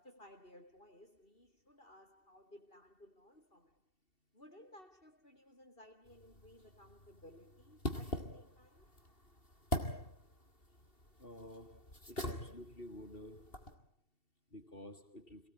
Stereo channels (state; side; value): late; right; 2.7 ms